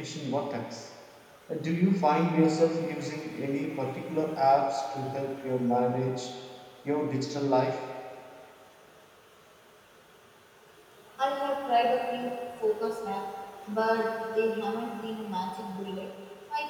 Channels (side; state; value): both; identical; correlation 1.00